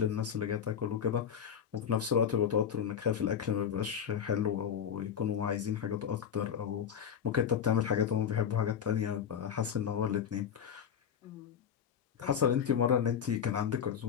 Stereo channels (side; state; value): right; quieter; 8.2 dB